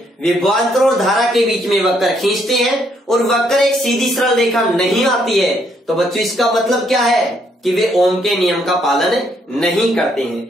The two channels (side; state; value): both; normal; correlation 0.71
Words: विभवांतर और धारा के बीच में वक्र खींचते हैं और वक्र एक सीधी सरल रेखा नहीं आती है, तो बच्चों इसका मतलब क्या है कि वे ओम के नियम का पालन नहीं करते